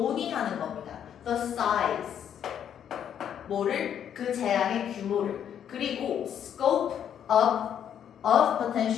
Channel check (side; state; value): right; quieter; 9.2 dB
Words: 겁니다. the size 뭐를 그 재앙의 규모를 그리고 scope of